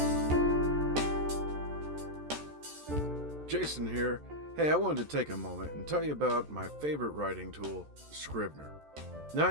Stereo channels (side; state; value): left; late; 14 ms